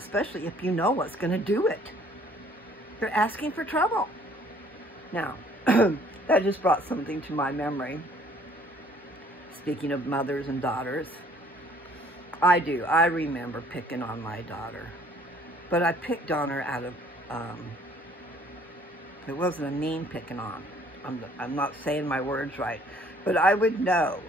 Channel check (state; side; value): normal; both; correlation 0.58